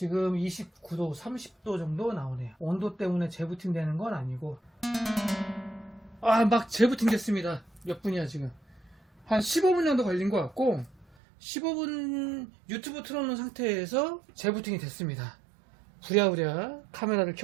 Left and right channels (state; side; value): drops out; left; at 11.2 s